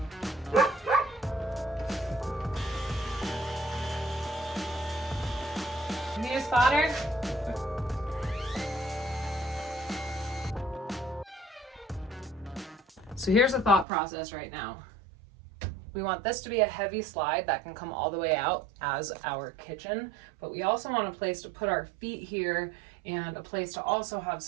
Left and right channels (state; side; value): drops out; left; at 13.9 s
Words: You need a spotter? So here's the thought process right now. We want this to be a heavy slide that can come all the way out as our kitchen, but we also want a place to put our feet here and a place to also have